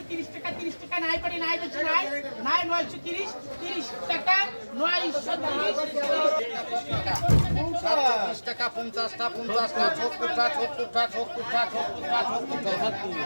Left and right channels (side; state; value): both; inverted; correlation -1.00